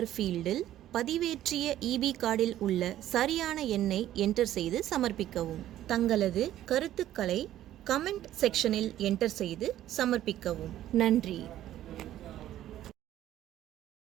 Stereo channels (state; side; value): quieter; left; 12.8 dB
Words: ஃபீல்டில் பதிவேற்றிய EB கார்டில் உள்ள சரியான எண்ணை என்டர் செய்து சமர்ப்பிக்கவும். தங்களது கருத்துக்களை கமெண்ட் செக்ஷனில் என்டர் செய்து சமர்ப்பிக்கவும். நன்றி.